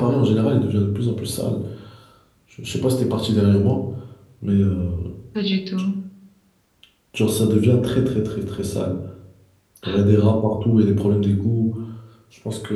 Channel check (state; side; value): identical; both; correlation 1.00